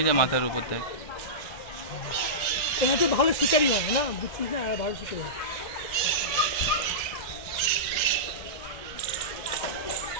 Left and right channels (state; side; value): late; right; 1.9 ms